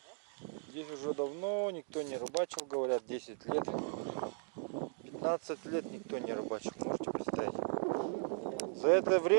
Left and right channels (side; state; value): left; silent; 53 dB below the other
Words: Здесь уже давно никто не рыбачил, говорят, 10 лет. 15 лет никто не рыбачил, можете представить. За это